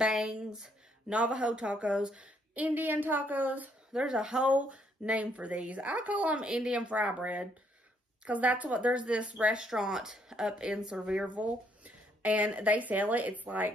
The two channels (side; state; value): both; normal; correlation 0.70